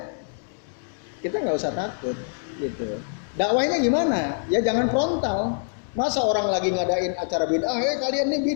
kita nggak usah takut gitu. Dakwahnya gimana? Ya jangan frontal. Masa orang lagi ngadain acara bid'ah, kalian nih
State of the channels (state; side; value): silent; right; digital silence